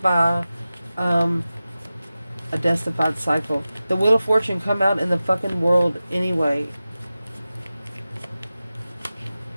by a death-defied cycle. The Wheel of Fortune come out in the fucking world anyway.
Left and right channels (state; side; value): inverted; both; correlation -0.95